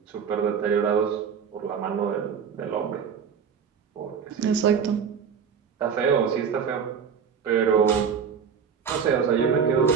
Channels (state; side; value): quieter; left; 6.9 dB